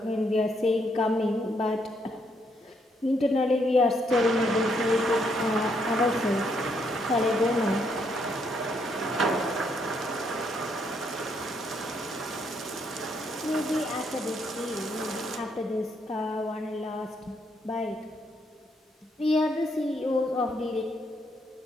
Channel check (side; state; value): both; normal; correlation 0.73